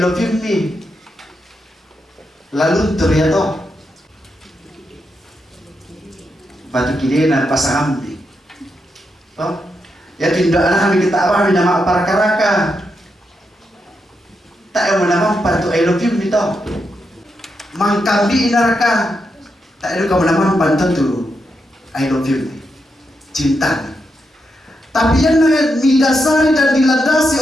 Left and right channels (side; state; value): both; normal; correlation 0.84